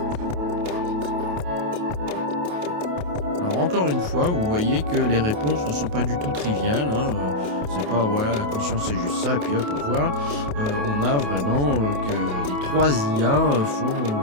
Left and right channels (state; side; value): late; left; 28 ms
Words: Alors encore une fois, vous voyez que les réponses ne sont pas du tout triviales, hein, c'est pas voilà, la conscience c'est juste ça et puis hop, au revoir. On a vraiment que les 3 IA font